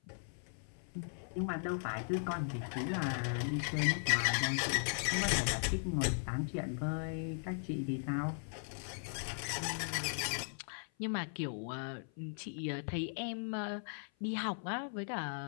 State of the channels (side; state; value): right; silent; 52 dB below the other